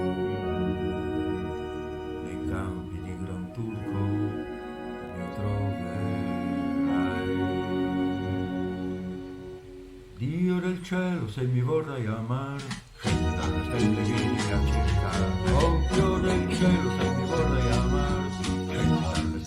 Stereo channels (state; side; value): identical; both; correlation 1.00